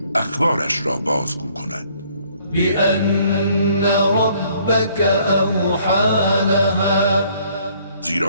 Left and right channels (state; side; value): inverted; both; correlation -0.62